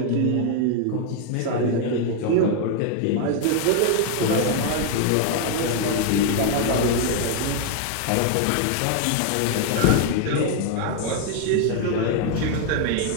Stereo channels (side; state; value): both; different; correlation 0.00